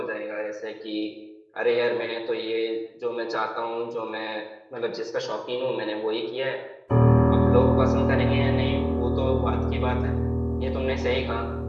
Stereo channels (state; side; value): identical; both; correlation 1.00